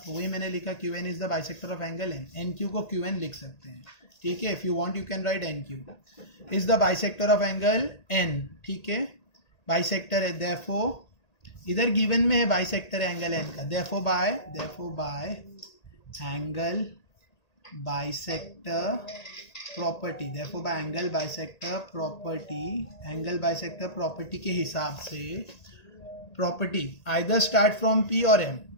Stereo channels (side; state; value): right; late; 1.8 ms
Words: वही मैंने लिखा. QN is the bisector of angle N. NQ को QN लिख सकते हैं. ठीक है, if you want you can right NQ is the bisector of angle N. ठीक है, बाइसेक्टर है. देयरफॉर इधर गिवन में है बाइसेक्टर एंगल N का. Therefore by angle bisector property, देखो बाय एंगल बाइसेक्टर प्रॉपर्टी के हिसाब से property either start from P और एम,